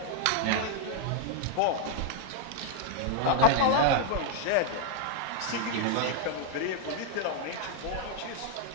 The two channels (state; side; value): different; both; correlation 0.00